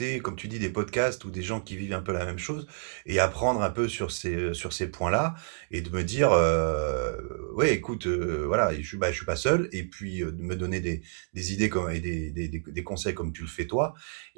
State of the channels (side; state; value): left; silent; digital silence